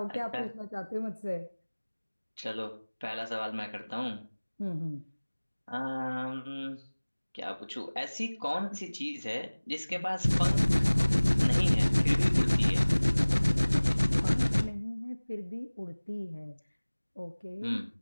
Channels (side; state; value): both; inverted; correlation -1.00